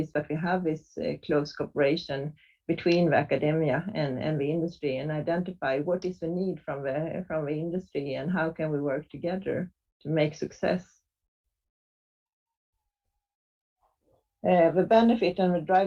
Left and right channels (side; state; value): both; identical; correlation 1.00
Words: that we have this close cooperation between the academia and the industry, and identify what is the need from the industry and how can we work together to make success. The benefit and the